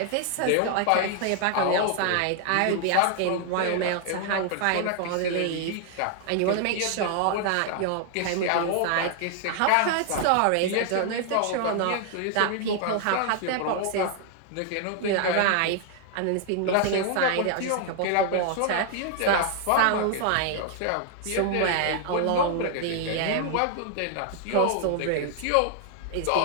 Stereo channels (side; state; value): both; different; correlation 0.00